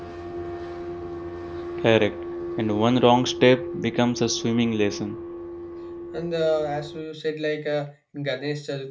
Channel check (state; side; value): identical; both; correlation 1.00